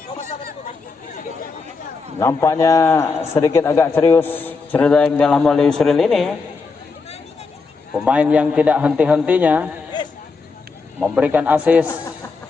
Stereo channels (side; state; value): right; quieter; 4.4 dB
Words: Nampaknya sedikit agak serius cerita yang dalam oleh Yusril ini. Pemain yang tidak henti-hentinya memberikan assist,